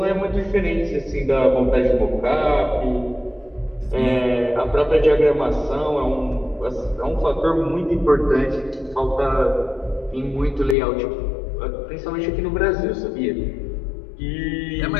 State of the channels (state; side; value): drops out; right; at 10.8 s